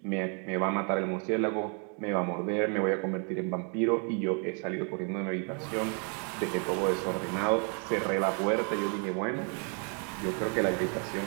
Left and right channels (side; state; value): left; quieter; 39.0 dB